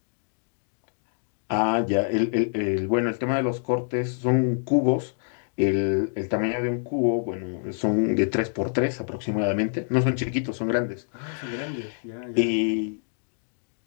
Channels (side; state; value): right; silent; digital silence